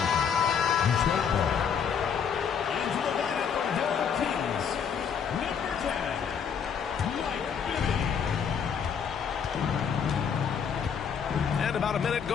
And about a minute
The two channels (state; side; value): quieter; right; 7.2 dB